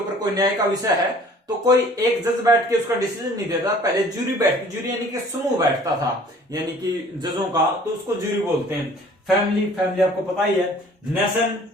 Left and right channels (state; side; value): normal; both; correlation 0.51